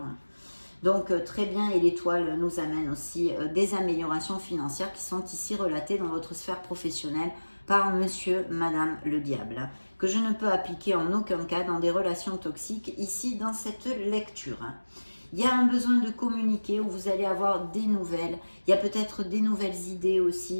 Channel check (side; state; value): both; inverted; correlation -1.00